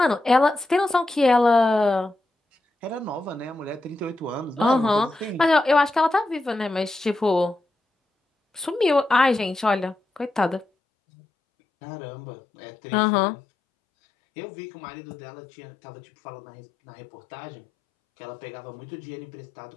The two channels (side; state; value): right; drops out; at 10.7 s